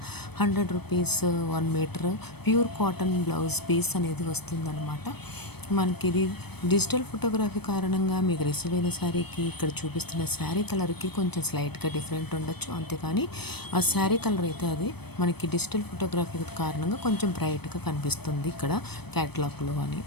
₹100 1 metre pure cotton blouse piece అనేది వస్తుందన్నమాట. మనకి ఇది డిజిటల్ ఫోటోగ్రఫీ కారణంగా మీకు రిసీవ్ అయిన శారీకి ఇక్కడ చూపిస్తున్న శారీ కలర్కి కొంచెం స్లైట్గా డిఫరెంట్ ఉండొచ్చు, అంతేకాని ఆ శారీ కలర్ అయితే అది మనకి డిజిటల్ ఫోటోగ్రఫీ కారణంగా కొంచెం బ్రైట్గా కనిపిస్తుంది ఇక్కడ క్యాటలాగ్లో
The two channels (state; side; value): late; right; 0.97 ms